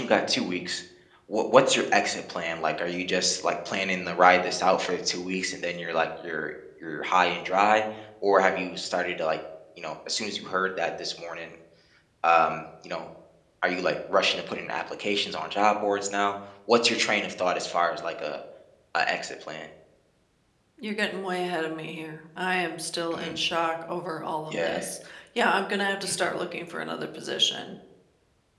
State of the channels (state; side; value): identical; both; correlation 1.00